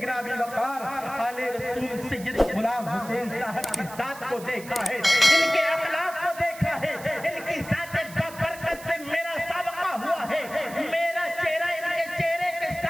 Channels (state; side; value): noise; right; hiss, 16 dB below the sound